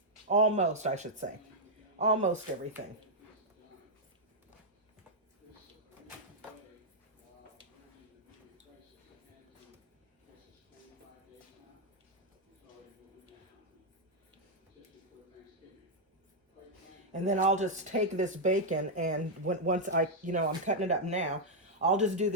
Almost, I should say. Almost everything. And then I'll just take this bacon, and once I'm cutting it up now, I'll just do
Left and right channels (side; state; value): both; normal; correlation -0.04